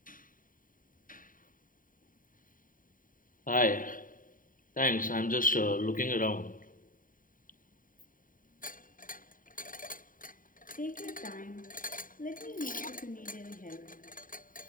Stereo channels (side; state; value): right; late; 0.39 ms